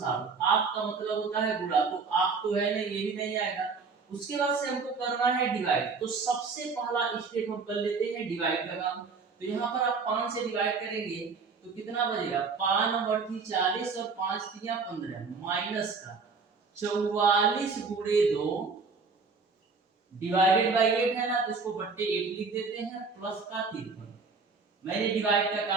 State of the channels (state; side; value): quieter; left; 4.7 dB